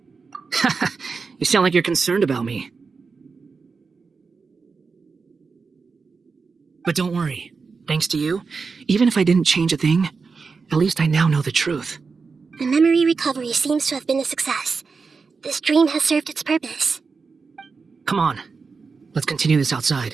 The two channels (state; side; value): quieter; left; 4.8 dB